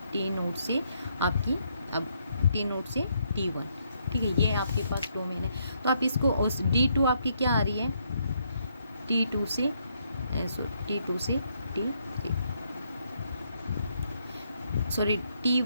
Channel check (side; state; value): both; inverted; correlation -0.74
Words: टी नोट से आपकी, अब टी नोट से T1। ठीक है, ये आपके पास डोमेन है। तो आप इसको उस D2 आपकी क्या आ रही है T2 से T2 से T3, सॉरी